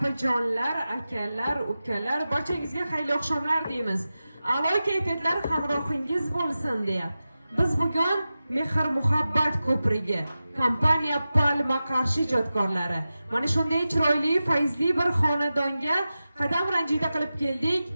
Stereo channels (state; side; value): inverted; both; correlation -0.94